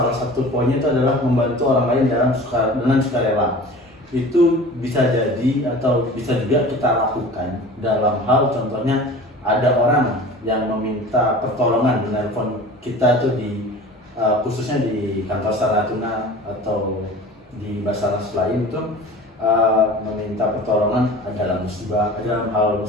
satu poinnya itu adalah membantu orang lain dengan sukarela. Itu bisa jadi atau bisa juga kita lakukan dalam hal contohnya ada orang yang meminta pertolongan menelpon kita tuh khususnya di kantor Natuna atau di Basarnas lain itu meminta pertolongan dalam hal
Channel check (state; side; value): normal; both; correlation 0.40